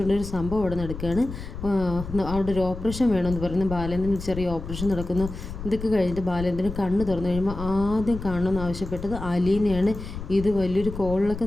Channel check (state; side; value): noise; left; rumble, 9 dB below the sound